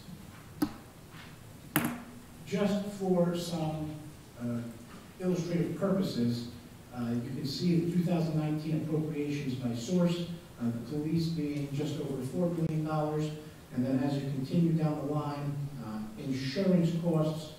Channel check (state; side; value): identical; both; correlation 1.00